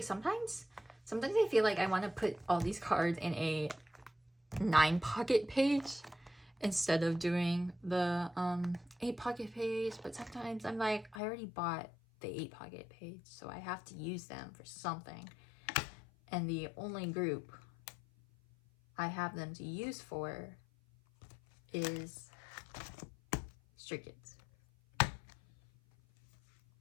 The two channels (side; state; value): right; drops out; at 11.2 s